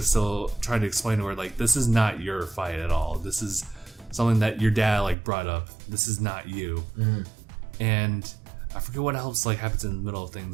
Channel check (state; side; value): drops out; left; at 5.2 s